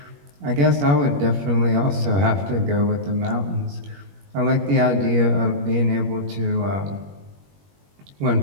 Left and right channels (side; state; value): left; late; 21 ms